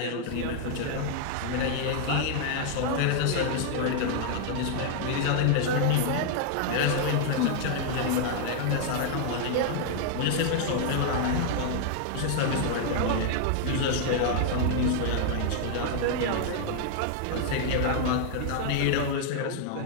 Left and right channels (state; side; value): different; both; correlation 0.00